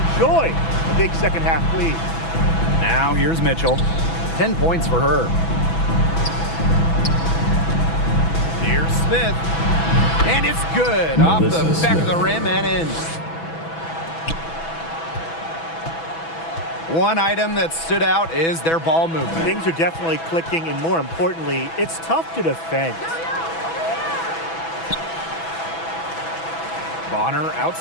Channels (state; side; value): late; right; 6.1 ms